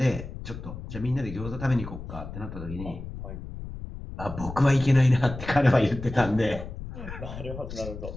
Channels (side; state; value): left; noise; rumble, 10 dB below the sound